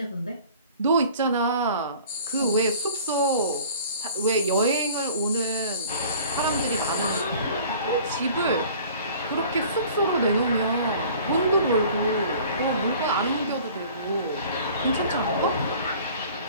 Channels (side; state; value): both; inverted; correlation -0.48